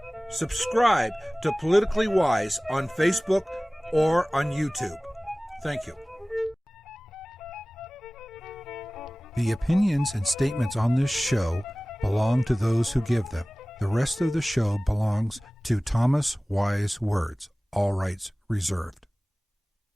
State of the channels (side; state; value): both; normal; correlation 0.98